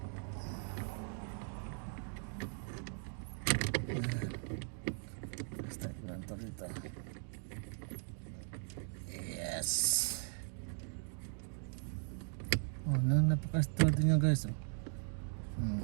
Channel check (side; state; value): left; silent; 52 dB below the other